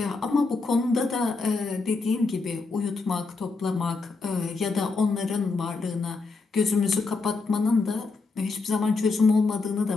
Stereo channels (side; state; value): right; quieter; 4.0 dB